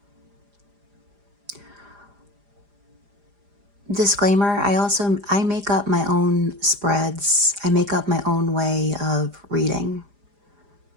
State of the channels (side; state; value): left; late; 4.9 ms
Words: Disclaimer, I make up my own spreads. I make up my own way of reading.